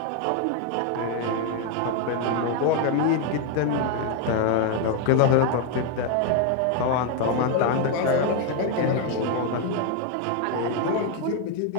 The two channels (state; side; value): different; both; correlation 0.01